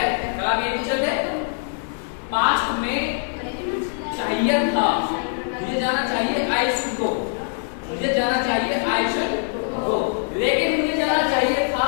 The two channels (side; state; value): right; silent; digital silence